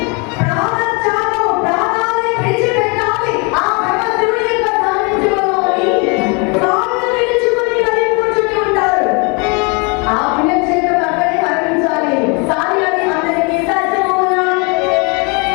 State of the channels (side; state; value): right; quieter; 31.9 dB